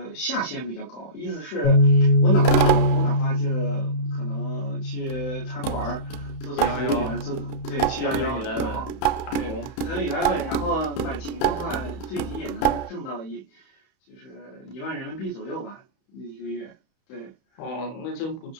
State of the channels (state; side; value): late; right; 31 ms